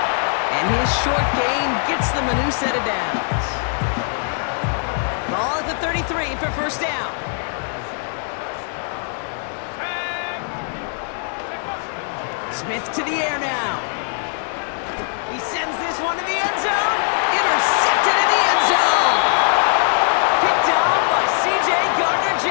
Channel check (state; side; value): silent; right; 57 dB below the other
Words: And his short gain gets them a new set of downs. Ball at the 33 for first down. Smith to the air now. He sends this one to the end zone. Intercepted in the end zone. Picked off by C.J.